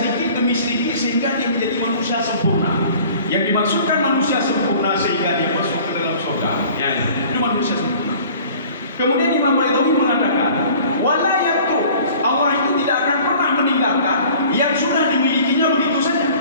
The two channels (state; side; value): inverted; both; correlation -0.48